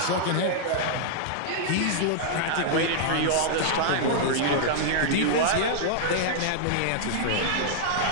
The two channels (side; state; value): both; different; correlation -0.01